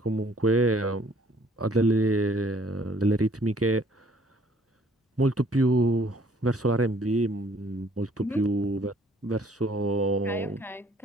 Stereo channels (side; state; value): both; normal; correlation 0.60